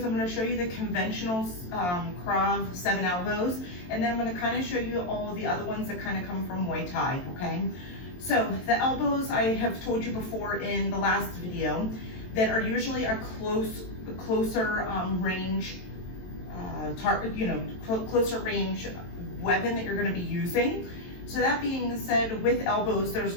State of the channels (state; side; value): late; right; 23 ms